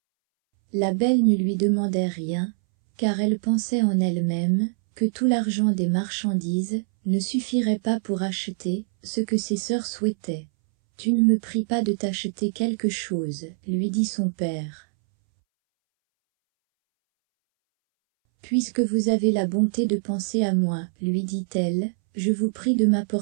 La belle ne lui demandait rien, car elle pensait en elle-même, que tout l'argent des marchandises ne suffirait pas pour acheter ce que ses sœurs souhaitaient. « Tu ne me pries pas de t'acheter quelque chose, lui dit son père. Puisque vous avez la bonté de penser à moi, lui dit-elle, je vous prie de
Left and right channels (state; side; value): silent; left; 63 dB below the other